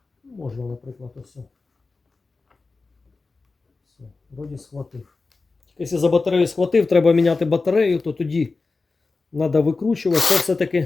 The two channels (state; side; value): quieter; right; 3.9 dB